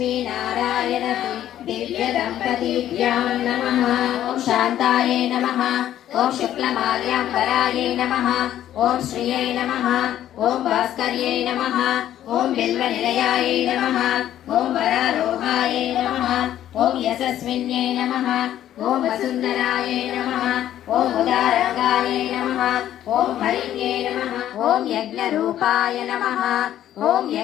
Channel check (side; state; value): right; quieter; 11.8 dB